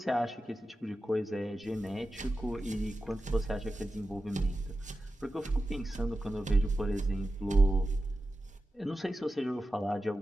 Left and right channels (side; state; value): both; normal; correlation 0.92